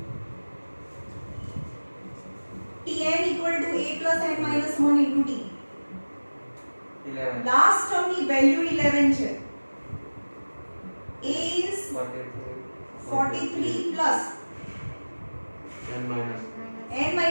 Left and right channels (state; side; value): inverted; both; correlation -1.00